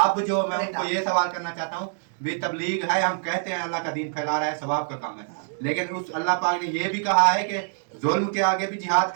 जो मैं उनको ये सवाल करना चाहता हूँ, भी तबलीग है, हम कहते हैं अल्लाह का दीन फैला रहा है, सवाब का काम है, लेकिन उस अल्लाह पाक ने ये भी कहा है कि जुल्म के आगे भी जिहाद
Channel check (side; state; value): left; silent; 62 dB below the other